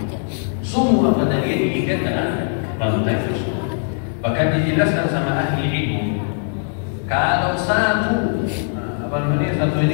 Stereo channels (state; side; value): silent; right; 66 dB below the other